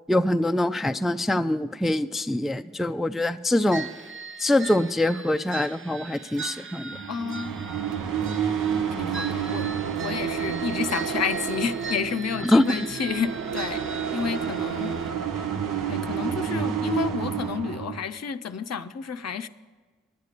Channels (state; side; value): normal; both; correlation 0.67